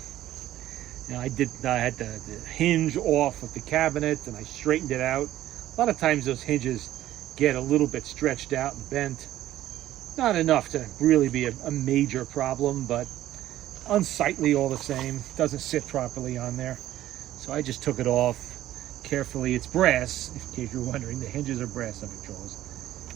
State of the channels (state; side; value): quieter; left; 13.6 dB